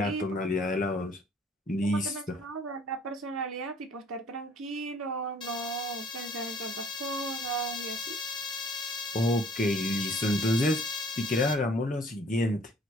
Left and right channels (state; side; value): normal; both; correlation 0.56